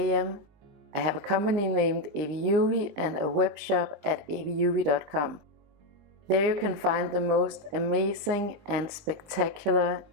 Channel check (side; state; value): left; late; 20 ms